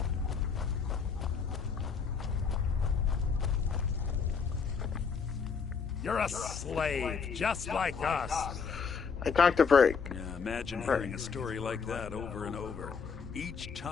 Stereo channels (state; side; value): quieter; right; 5.8 dB